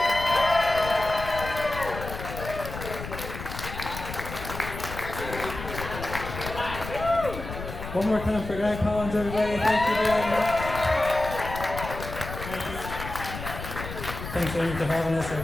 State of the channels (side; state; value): left; noise; rumble, 9 dB below the sound